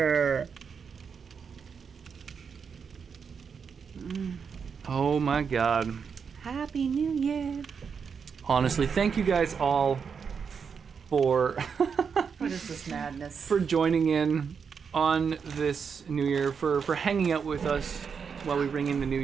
Oh my god. Happy New Year. Honestly, thank you guys all for What is this madness? for joining in on this New Year, for hanging out with us while we ring in the New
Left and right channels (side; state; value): left; quieter; 6.3 dB